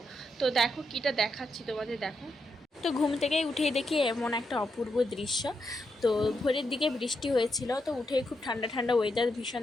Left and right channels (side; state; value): both; normal; correlation 0.83